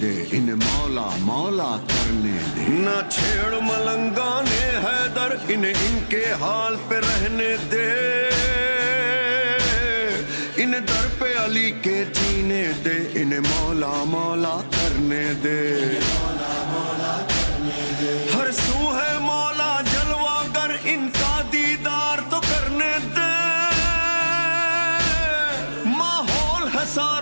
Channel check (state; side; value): inverted; both; correlation -1.00